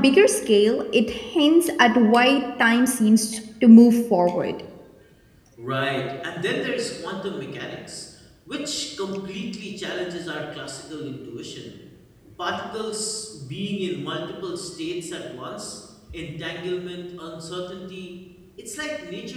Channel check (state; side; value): identical; both; correlation 1.00